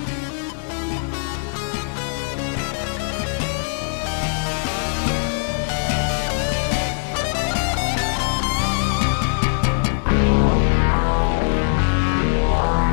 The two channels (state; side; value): silent; right; digital silence